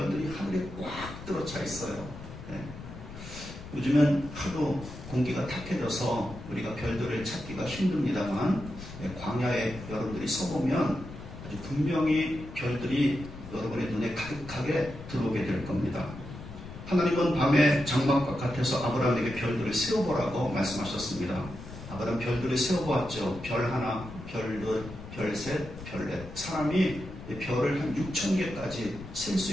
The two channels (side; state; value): left; noise; rumble, 13 dB below the sound